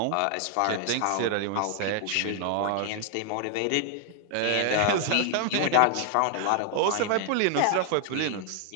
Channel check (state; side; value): different; both; correlation 0.00